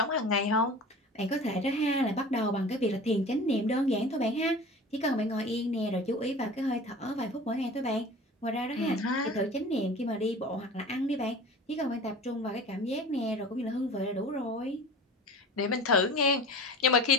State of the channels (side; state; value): both; normal; correlation 0.38